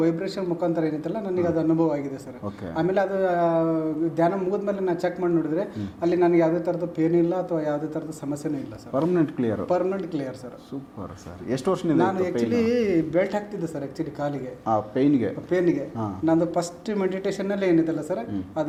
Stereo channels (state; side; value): identical; both; correlation 1.00